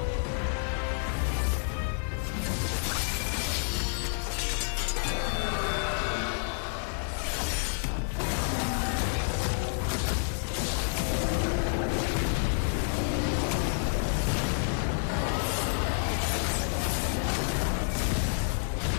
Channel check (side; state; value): right; silent; 58 dB below the other